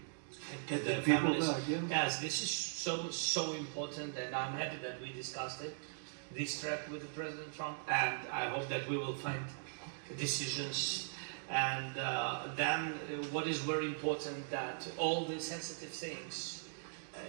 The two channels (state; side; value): silent; left; digital silence